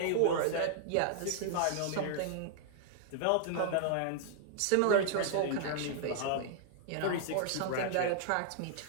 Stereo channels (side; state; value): both; different; correlation -0.01